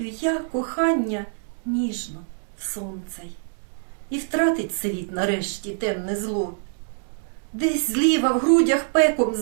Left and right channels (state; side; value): silent; left; 62 dB below the other